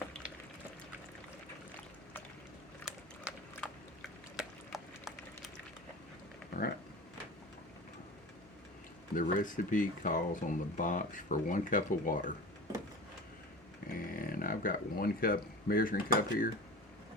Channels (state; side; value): normal; both; correlation 0.34